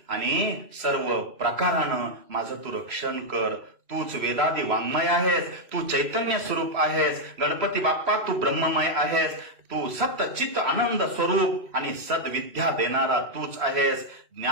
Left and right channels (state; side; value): late; left; 3.1 ms